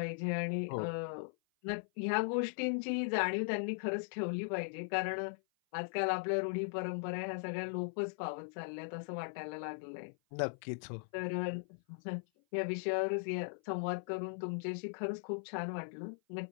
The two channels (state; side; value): silent; right; 52 dB below the other